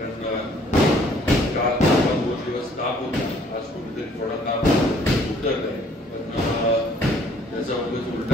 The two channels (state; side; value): normal; both; correlation 0.59